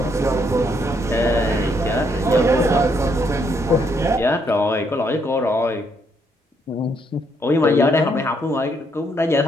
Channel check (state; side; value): normal; both; correlation 0.73